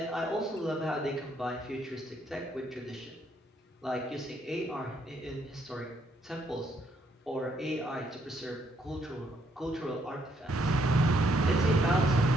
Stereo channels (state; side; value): normal; both; correlation 0.72